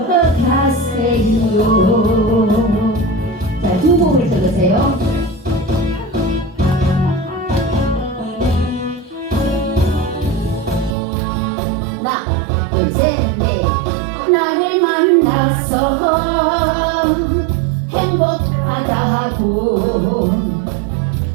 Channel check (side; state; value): left; drops out; at 11.0 s